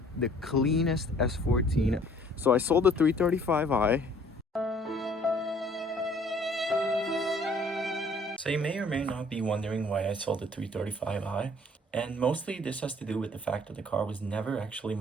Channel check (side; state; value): both; normal; correlation 0.56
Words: the cleanest S14. So I sold the 335i. So you may or may not be wondering why I sold the 335i, and mostly this has to do with the fact that the car was never actually